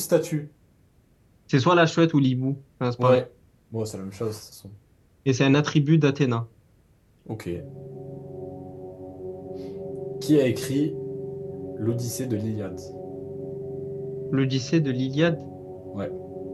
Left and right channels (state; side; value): identical; both; correlation 1.00